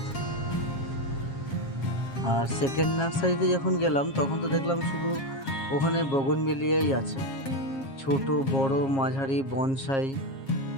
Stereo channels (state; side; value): late; right; 7.4 ms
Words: আর সেকেন্ড নার্সারিতে যখন গেলাম তখন তো দেখলাম শুধু ওখানে বগনভেলিয়াই আছে, ছোট বড় মাঝারি বনসাই।